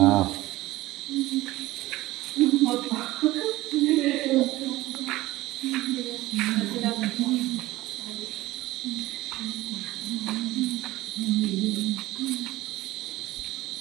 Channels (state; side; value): quieter; left; 17.8 dB